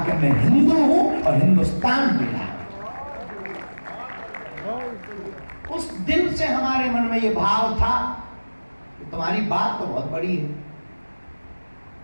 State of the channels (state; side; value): inverted; both; correlation -1.00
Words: कि मैं हिंदू हूं और हिंदुस्तान मिला। उस दिन से हमारे मन में ये भाव था कि तुम्हारी बात तो बहुत बड़ी है।